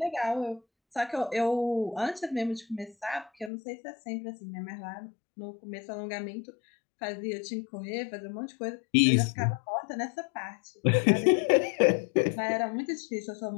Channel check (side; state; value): right; drops out; at 3.5 s